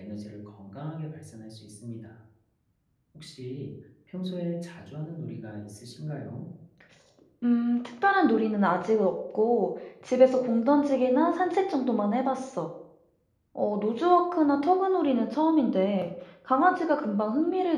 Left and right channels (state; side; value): identical; both; correlation 1.00